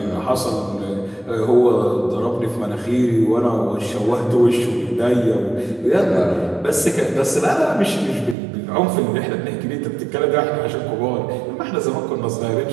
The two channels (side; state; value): left; drops out; at 8.3 s